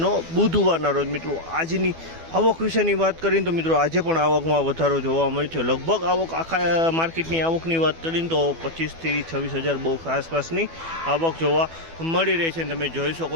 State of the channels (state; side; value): late; left; 12 ms